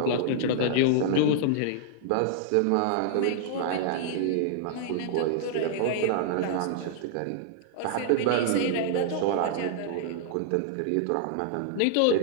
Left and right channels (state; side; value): different; both; correlation -0.01